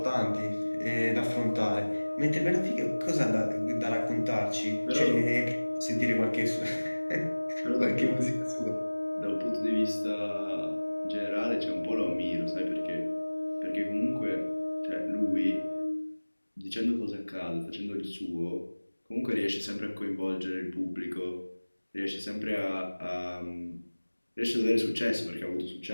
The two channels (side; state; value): both; inverted; correlation -1.00